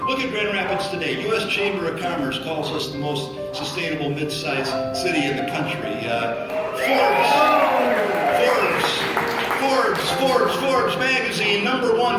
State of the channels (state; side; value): identical; both; correlation 1.00